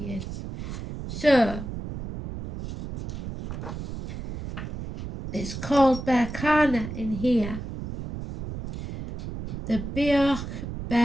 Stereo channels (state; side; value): noise; right; rumble, 8 dB below the sound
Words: is. So, it's called Berkana in here. The bioch